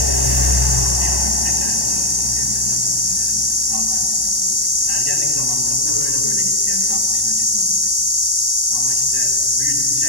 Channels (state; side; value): late; left; 1.1 ms